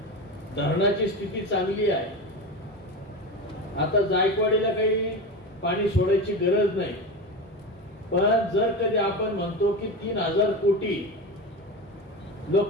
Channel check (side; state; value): both; normal; correlation 0.23